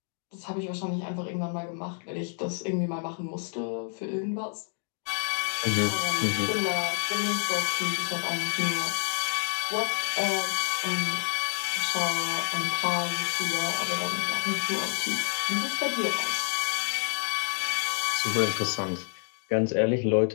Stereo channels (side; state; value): right; silent; digital silence